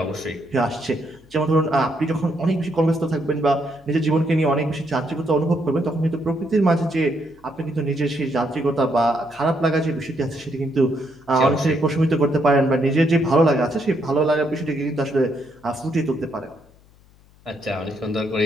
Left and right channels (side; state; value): left; noise; hum, 28 dB below the sound